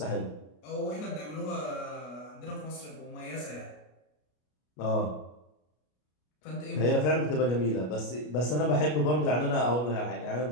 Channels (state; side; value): late; right; 33 ms